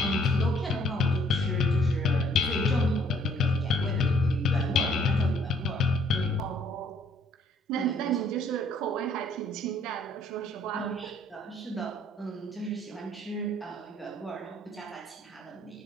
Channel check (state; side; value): normal; both; correlation 0.63